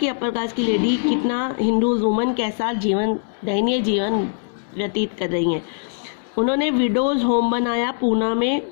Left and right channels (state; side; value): silent; right; 65 dB below the other